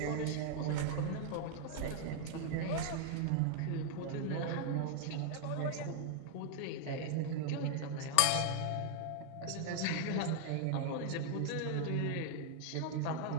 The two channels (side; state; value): both; different; correlation 0.00